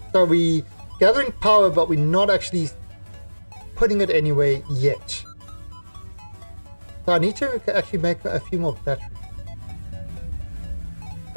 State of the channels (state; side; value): inverted; both; correlation -1.00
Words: So we're gathering power, but we're not actually putting it anywhere yet. So I need to actually make a few more batteries.